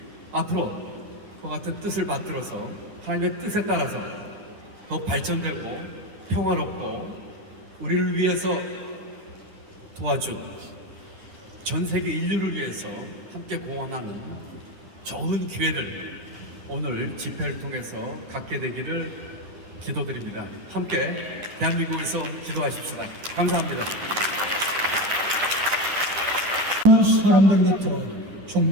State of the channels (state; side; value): late; left; 10 ms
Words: 앞으로 그 같은 뜻을 받들어서 하나님의 뜻에 따라서 더욱 발전되고 평화롭고 우리를 위해서 도와준 전 세계 인류를 위해서 함께 공헌하는 좋은 기회를 오늘 집회를 통해서 갖게 되기를 기도드립니다. 함께 대한민국에서 기도하십시다. 감사합니다. 사람들로부터